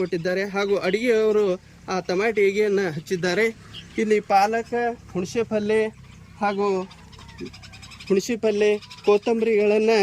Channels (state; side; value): identical; both; correlation 1.00